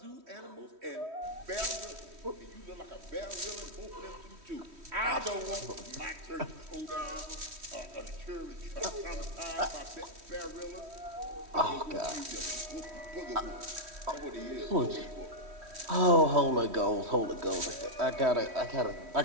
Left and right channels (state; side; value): late; left; 3.1 ms